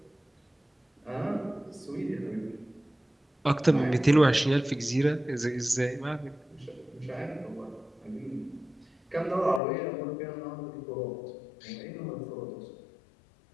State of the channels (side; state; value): right; drops out; at 9.6 s